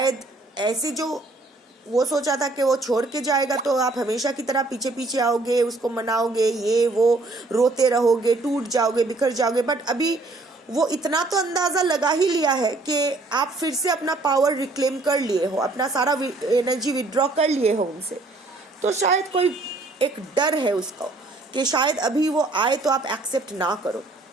ऐसे जो वो सोचा था कि वो छोड़ के जाएगा तो आप हमेशा की तरह पीछे पीछे आओगे, उसको मनाओगे, ये वो रोते रहोगे, टूट जाओगे, बिखर जाओगे। बट अभी वो इतना तो अंदाजा लगा ही लिया है कि आप फिर से अपना पावर रिक्लेम कर लिए हो, अपना सारा एनर्जी विड्रॉ कर लिए हो उनसे। तो शायद कोई एक डर है उसको कि शायद अभी वो आए तो आप एक्सेप्ट ना करो।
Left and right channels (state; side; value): quieter; left; 3.2 dB